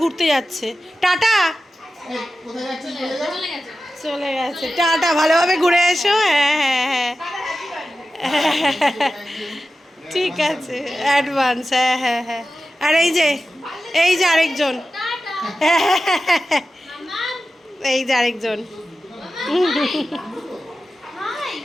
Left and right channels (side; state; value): both; normal; correlation 0.93